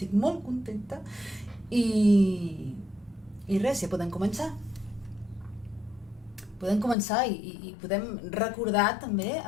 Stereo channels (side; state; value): right; drops out; at 7.0 s